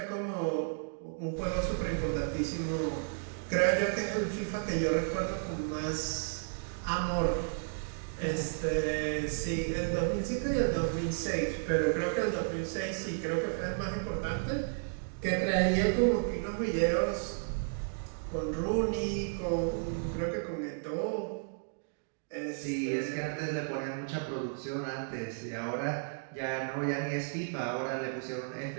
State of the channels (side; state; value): left; silent; digital silence